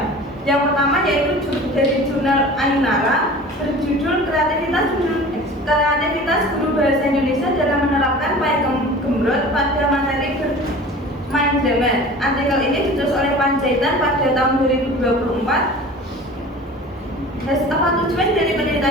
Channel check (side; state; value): both; normal; correlation 0.40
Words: Yang pertama yaitu dari jurnal Ainara berjudul kreativitas guru bahasa Indonesia dalam menerapkan Pakem Gumrot pada materi bermain drama. Artikel ini ditulis oleh Panjaitan pada tahun 2024. Tujuan dari